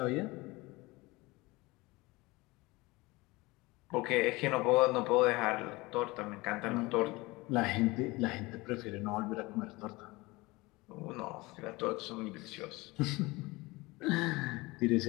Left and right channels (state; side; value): quieter; right; 22.5 dB